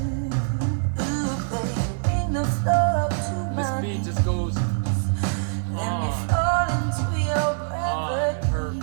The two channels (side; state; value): left; silent; digital silence